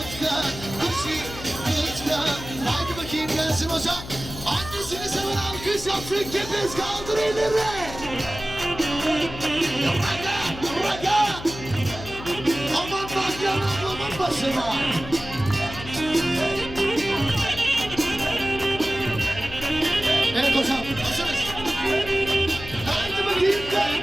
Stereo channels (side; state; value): left; noise; hum, 12 dB below the sound